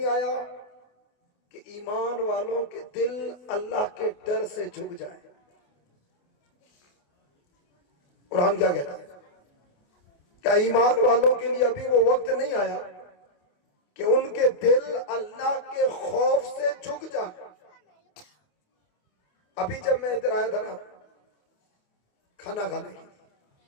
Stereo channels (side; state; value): right; late; 28 ms